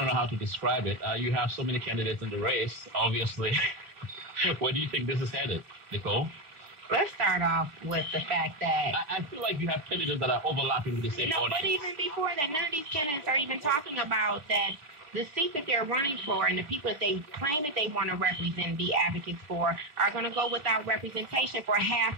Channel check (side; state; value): left; late; 3.3 ms